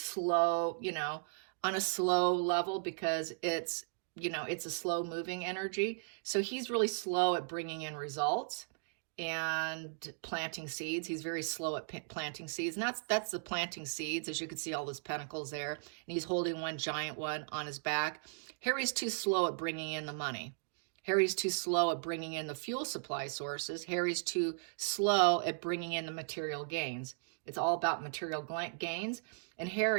level, because it's a slow moving energy. So he's really slow at bringing in results and planting seeds. He's very slow at planting seeds. And that's the planting seeds, as you can see all those pentacles there. And he's holding one giant one on his back. Harry's too slow at bringing in the money. Harry's too slow at bringing in the fuel supply sources. Harry's too slow at bringing in the material gains. It's all about material gains. And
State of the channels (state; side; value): silent; left; digital silence